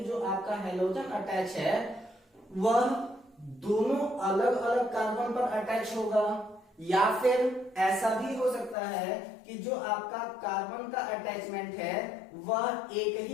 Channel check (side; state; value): right; drops out; at 8.8 s